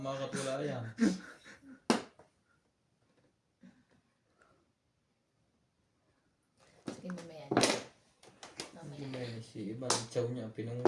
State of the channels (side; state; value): both; identical; correlation 1.00